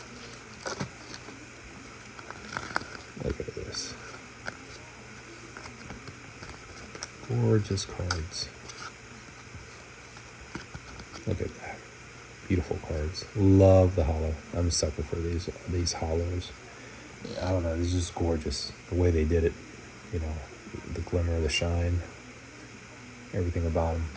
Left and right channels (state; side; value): identical; both; correlation 1.00